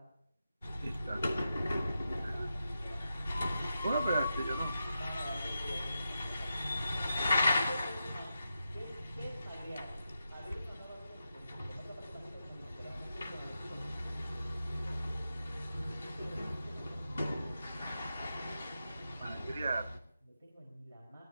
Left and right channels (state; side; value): inverted; both; correlation -0.88